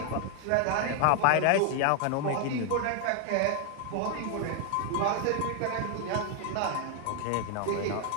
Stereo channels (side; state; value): both; different; correlation 0.00